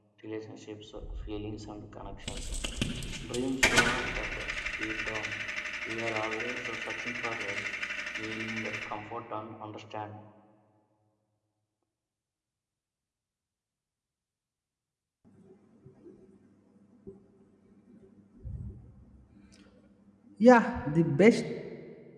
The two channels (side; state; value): both; identical; correlation 1.00